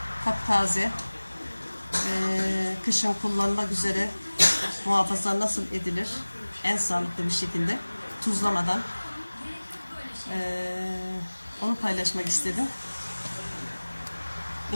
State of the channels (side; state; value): both; inverted; correlation -1.00